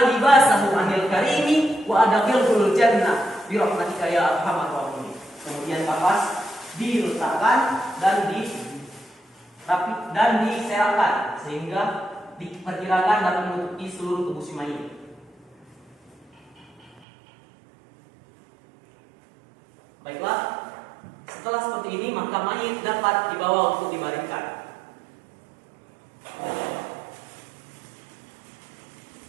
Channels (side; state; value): left; drops out; at 17.0 s